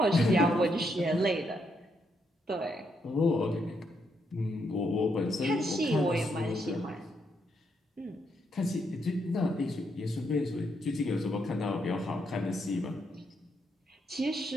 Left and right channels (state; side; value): normal; both; correlation 0.77